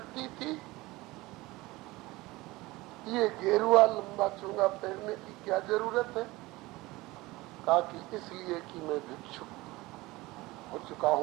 थी? ये गेरुआ लंबा चूंगा पहनने की क्या जरूरत है? कहा कि इसलिए कि मैं भिक्षुक हो चुका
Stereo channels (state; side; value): quieter; left; 20.5 dB